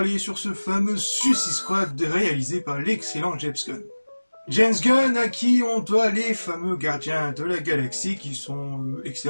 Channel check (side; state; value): both; inverted; correlation -1.00